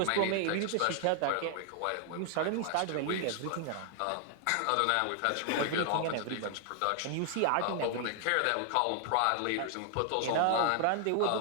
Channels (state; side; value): different; both; correlation 0.00